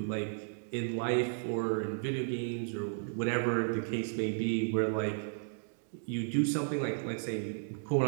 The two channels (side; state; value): left; silent; digital silence